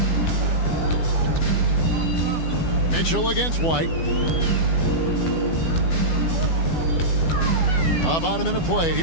Mitchell against White. About a minute played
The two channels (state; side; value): late; right; 12 ms